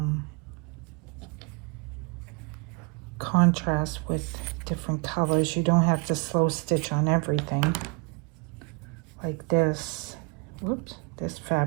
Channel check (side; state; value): left; quieter; 32.1 dB